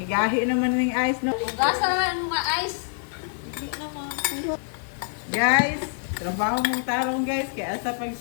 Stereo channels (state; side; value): silent; right; 61 dB below the other